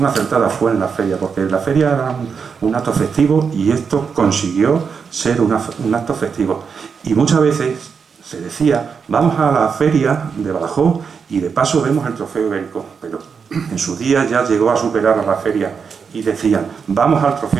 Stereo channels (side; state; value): left; quieter; 6.0 dB